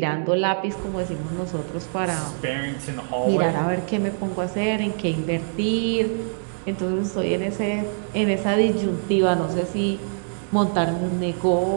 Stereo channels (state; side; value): silent; left; digital silence